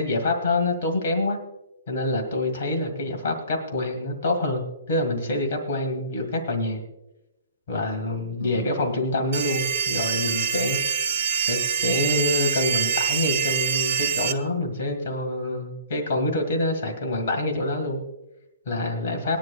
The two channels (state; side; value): inverted; both; correlation -0.48